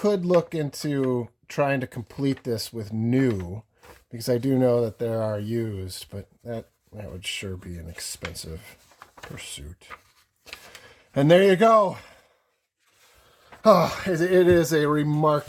look into trying to complete this with new, because I do know that there are used, but that would sure be an expensive pursuit. And there you go. Oh, it is a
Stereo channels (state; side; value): identical; both; correlation 1.00